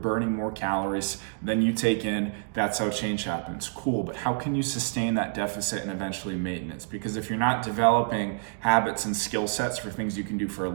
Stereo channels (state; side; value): silent; left; digital silence